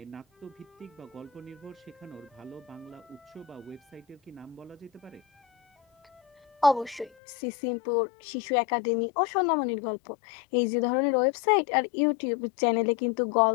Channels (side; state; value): right; drops out; at 7.1 s